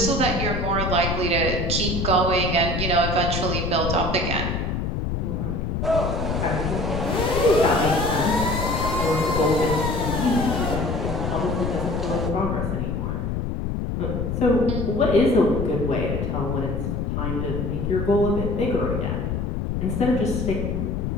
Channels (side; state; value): left; noise; rumble, 1 dB below the sound